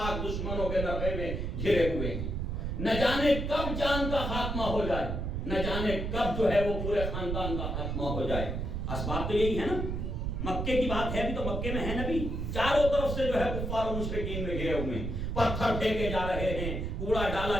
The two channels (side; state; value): right; noise; rumble, 2 dB below the sound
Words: دشمنوں کے نرغے میں گھرے ہوئے ہیں. نہ جانے کب جان کا خاتمہ ہو جائے, نہ جانے کب جو ہے وہ پورے خاندان کا خاتمہ ہو جائے. اسباب تو یہی ہے نا. مکے کی بات ہے بھی تو مکے میں ہے نبی, چاروں طرف سے جو ہے کفار و مشرکین میں گھرے ہوئے ہیں, پتھر پھینکے جا رہے ہیں, کوڑا